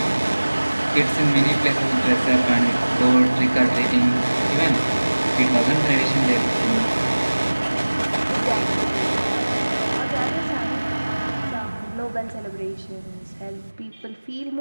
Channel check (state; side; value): inverted; both; correlation -1.00